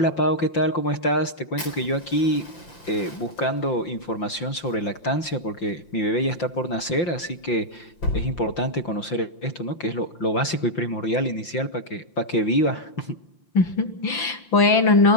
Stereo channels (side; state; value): right; late; 5.8 ms